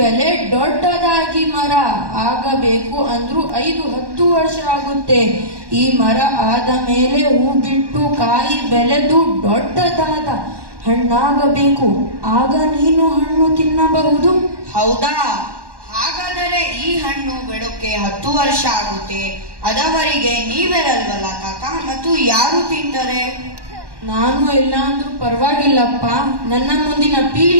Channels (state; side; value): late; left; 1.1 ms